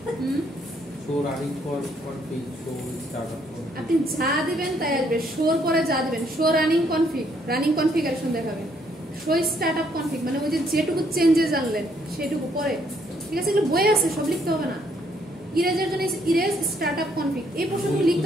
show running for config show startup. আপনি যা দিবেন তাই আসবে, শোর পরে যা দিবেন, show running config, running configuration দেখাবে, শো স্টার্টআপ কনফিগ মানে ওই যে যেটুকু চেঞ্জেস আনলেন সেটুকু পরে। ঠিক আছে, এগুলো বই আছে, সব লিখতে হবে না। ইরেজের জন্য ইরেজ স্টার্টআপ কনফিগ এই প্রশ্নগুলো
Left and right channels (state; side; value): normal; both; correlation 0.69